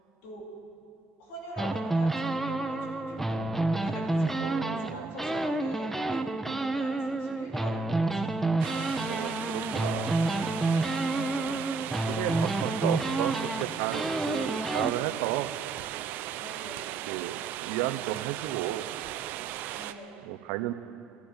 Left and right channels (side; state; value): left; quieter; 3.9 dB